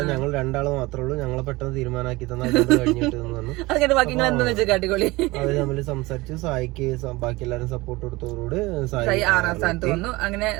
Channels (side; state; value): left; quieter; 21.4 dB